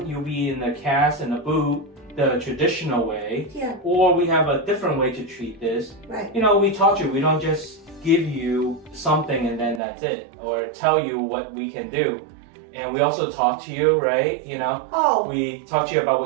You'll be in the cast and the boot, the traditional way. Yeah. Or we have a different way to treat this. Right. We taught you. We don't just give you something and then that's it. Or tell you what we can do. And we also talk to you, right? Oh. We talk to you about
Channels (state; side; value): drops out; left; at 9.8 s